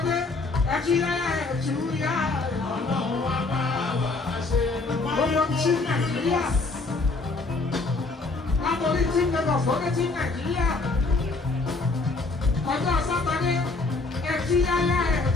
ẹ̀kíyáyá ẹ̀túyá. Gbogbo sí Nàìjíríà, látọ̀rí tí Lagos fọ́dé sí Nàìjíríà. ọjọ́ sátani ẹtí yáyá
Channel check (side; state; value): right; quieter; 3.6 dB